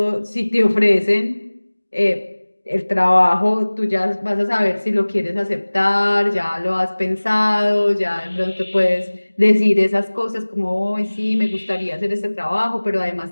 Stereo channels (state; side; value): inverted; both; correlation -1.00